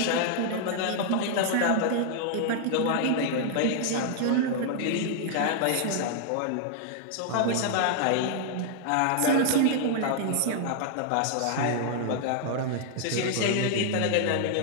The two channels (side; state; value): both; different; correlation -0.01